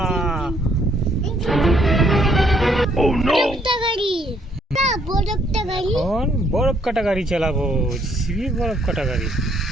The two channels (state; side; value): normal; both; correlation 0.68